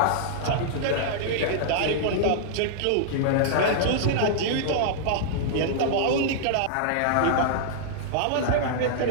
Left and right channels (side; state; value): both; different; correlation -0.01